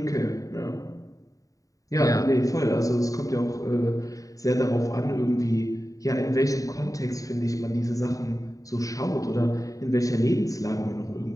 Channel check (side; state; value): right; late; 0.16 ms